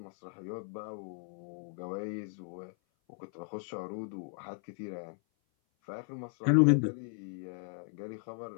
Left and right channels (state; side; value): silent; right; 54 dB below the other